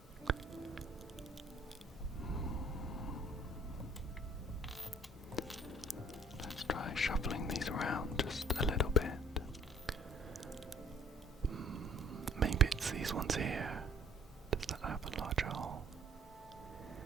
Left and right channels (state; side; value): normal; both; correlation 0.57